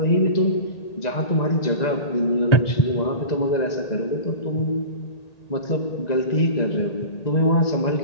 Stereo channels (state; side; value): late; right; 2.0 ms